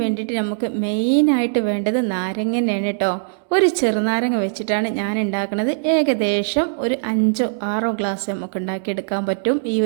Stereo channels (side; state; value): left; silent; digital silence